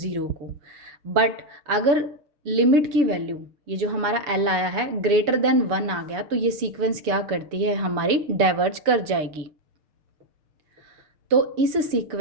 को। बट अगर लिमिट की वैल्यू, ये जो हमारा l आया है, ग्रेटर देन 1 आ गया, तो ये सीक्वेंस क्या करती है, हमारी डाइवर्ज कर जाएगी। तो इस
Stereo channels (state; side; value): late; left; 7.0 ms